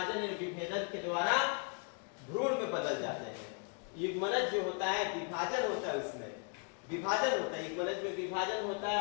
और विभेदन के द्वारा भ्रूण में बदल जाते हैं। युग्मनज जो होता है विभाजन होता है, उसमें विभाजन होता है, युग्मनज में विभाजन होता है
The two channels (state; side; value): quieter; right; 39.1 dB